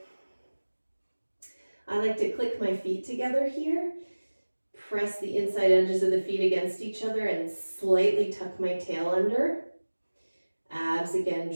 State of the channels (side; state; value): both; inverted; correlation -1.00